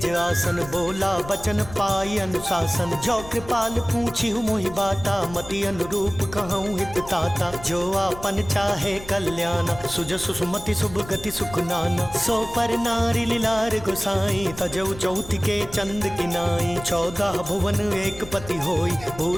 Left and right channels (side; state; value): left; noise; rumble, 15 dB below the sound